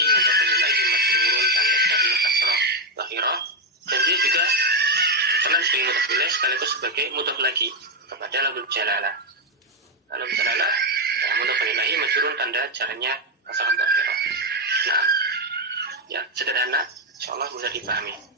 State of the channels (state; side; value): normal; both; correlation 0.05